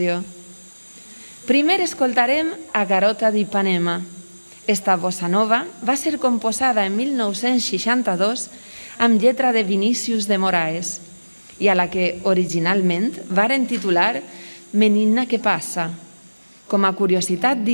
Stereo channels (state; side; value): inverted; both; correlation -1.00